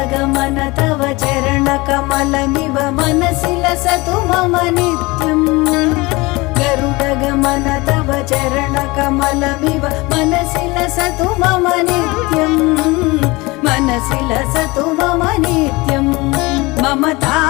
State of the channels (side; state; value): right; quieter; 23.2 dB